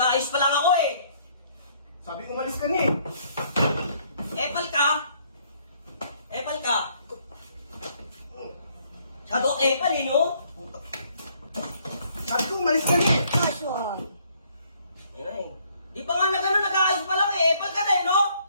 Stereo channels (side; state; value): both; inverted; correlation -0.66